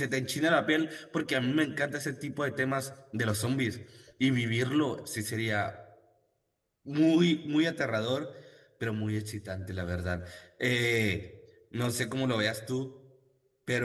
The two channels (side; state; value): both; identical; correlation 1.00